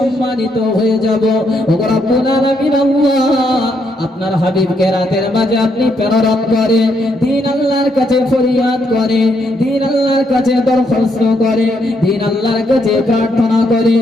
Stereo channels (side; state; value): both; normal; correlation 0.76